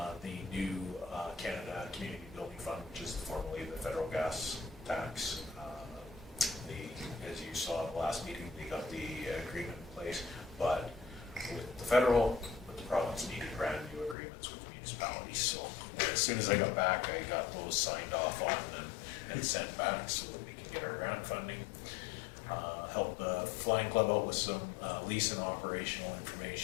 The new Canada Community Building Fund, which is formerly the federal gas tax. As you saw at the last meeting, they got the agreement in place, but with the federal, with the province needed brand new agreements with municipalities. So as soon as I got back, I got those signed off on and sent back so that we can get our grant funding. Help the Flying Club out with some lease and operational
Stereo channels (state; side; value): drops out; right; at 14.2 s